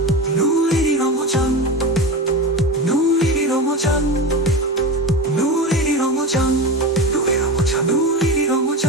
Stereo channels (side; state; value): both; normal; correlation 0.23